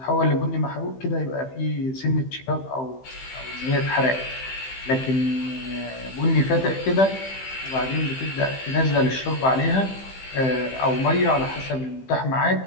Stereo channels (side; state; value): right; late; 15 ms